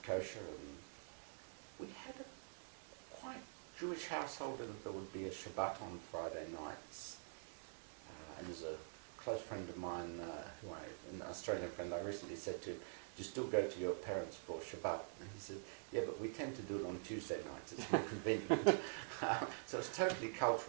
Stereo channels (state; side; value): silent; left; digital silence